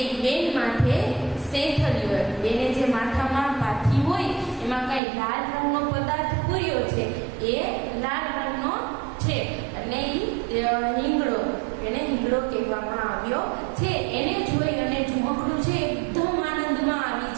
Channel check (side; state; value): left; drops out; at 5.0 s